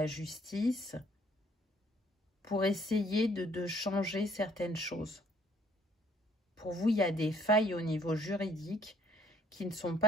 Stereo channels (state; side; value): normal; both; correlation 0.62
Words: justice, pour essayer de changer certaines choses. Pour vous, il y a des failles au niveau juridique qui ne sont